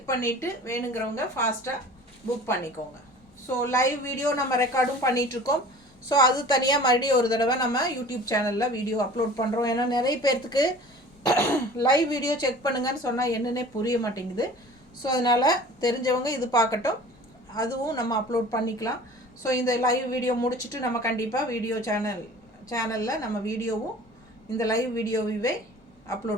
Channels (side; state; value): both; normal; correlation 0.44